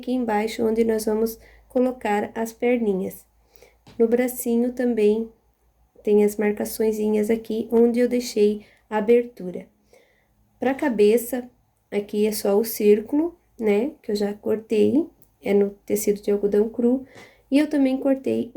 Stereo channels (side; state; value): both; identical; correlation 1.00